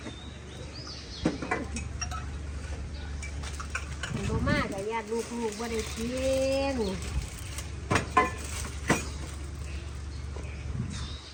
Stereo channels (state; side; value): identical; both; correlation 1.00